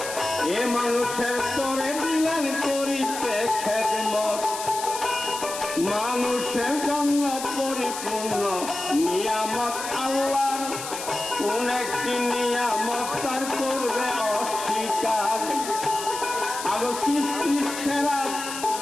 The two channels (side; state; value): left; noise; hiss, 8 dB below the sound